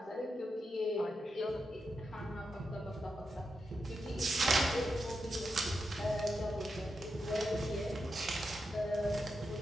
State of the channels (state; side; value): normal; both; correlation 0.87